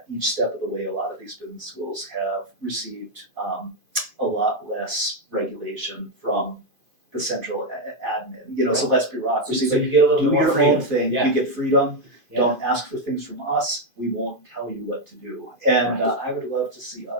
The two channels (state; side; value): late; left; 2.5 ms